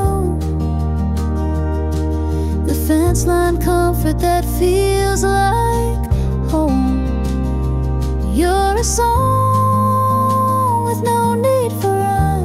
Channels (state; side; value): identical; both; correlation 1.00